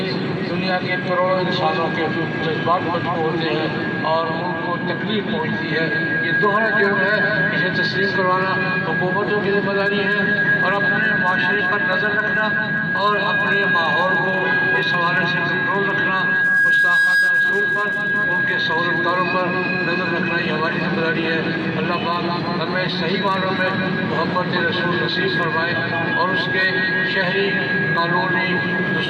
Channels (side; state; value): both; identical; correlation 1.00